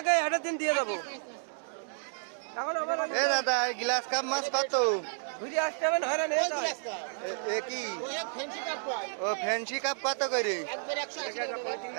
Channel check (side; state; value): left; silent; digital silence